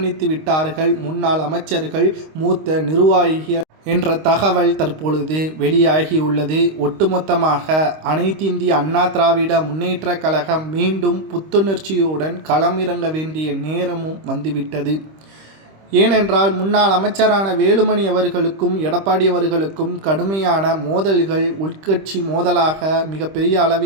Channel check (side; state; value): left; late; 26 ms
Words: விட்டார்கள் முன்னாள் அமைச்சர்கள், மூத்த நிர்வாகிகள் என்ற தகவல் தற்பொழுது வெளியாகியுள்ளது. ஒட்டுமொத்தமாக அனைத்திந்திய அண்ணா திராவிட முன்னேற்ற கழகம் மீண்டும் புத்துணர்ச்சியுடன் களமிறங்க வேண்டிய நேரமும் வந்துவிட்டது. ஏனென்றால் முன்னாள் அமைச்சரான வேலுமணி அவர்களுக்கும் எடப்பாடி அவர்களுக்கும் கடுமையான மோதல்கள், உட்கட்சி மோதலாக மிகப்பெரிய